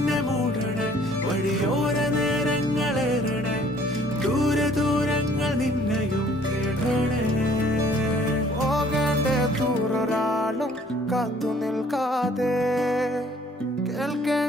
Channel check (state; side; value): normal; both; correlation 0.58